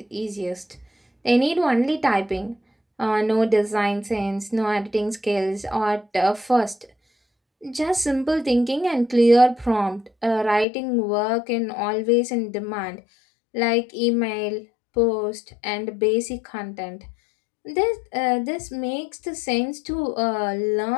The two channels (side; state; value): right; drops out; at 10.7 s